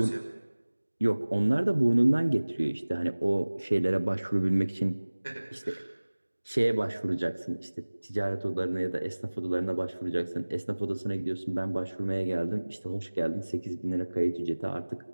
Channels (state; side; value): inverted; both; correlation -1.00